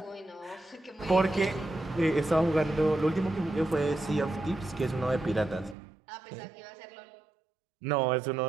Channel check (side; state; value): left; drops out; at 5.8 s